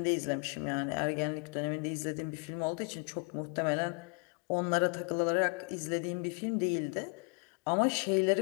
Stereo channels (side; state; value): right; quieter; 36.8 dB